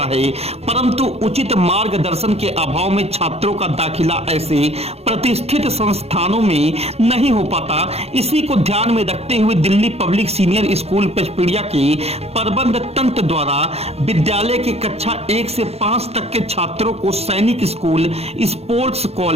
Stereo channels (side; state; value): left; late; 0.30 ms